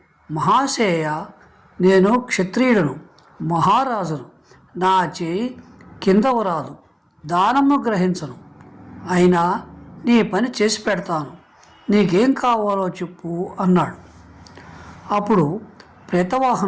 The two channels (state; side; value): identical; both; correlation 1.00